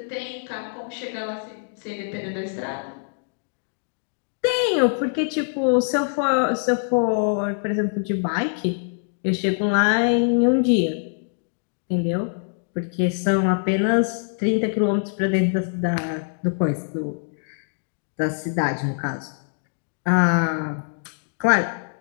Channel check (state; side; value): silent; right; digital silence